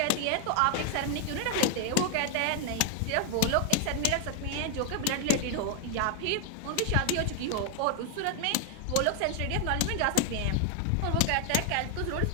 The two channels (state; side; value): different; both; correlation 0.01